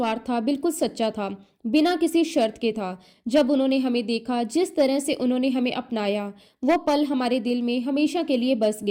था, बिल्कुल सच्चा था, बिना किसी शर्त के था। जब उन्होंने हमें देखा, जिस तरह से उन्होंने हमें अपनाया, वो पल हमारे दिल में हमेशा के लिए बस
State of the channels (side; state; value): both; identical; correlation 1.00